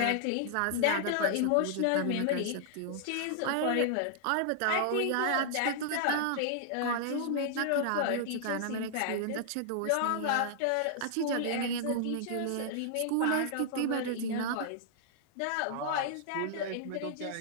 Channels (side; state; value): both; different; correlation -0.01